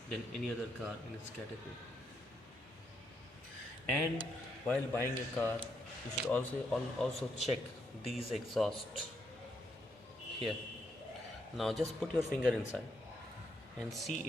than any other car in its category. And while buying a car, you should also check these exhausts here. Now just put your finger inside and see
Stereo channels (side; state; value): both; normal; correlation 0.77